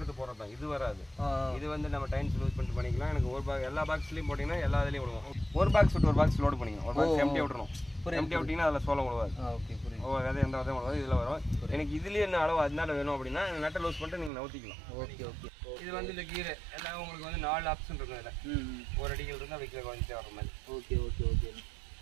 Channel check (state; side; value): drops out; left; at 14.3 s